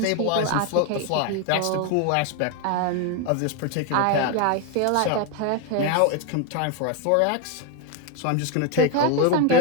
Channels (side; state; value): both; different; correlation 0.02